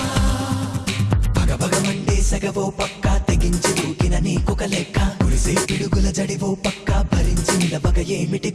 పగపగమంటే సగవో పక్క తెగించి దూకిన నీకొక లెక్క కురిసే పిడుగుల జడివో పక్క భరించి నిలబగ ఏమిటి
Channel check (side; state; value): both; identical; correlation 1.00